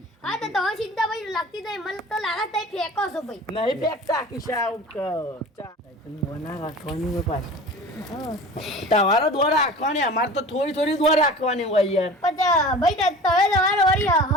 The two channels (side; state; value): both; normal; correlation 0.39